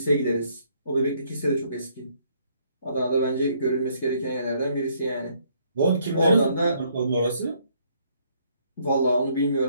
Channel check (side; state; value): both; inverted; correlation -0.68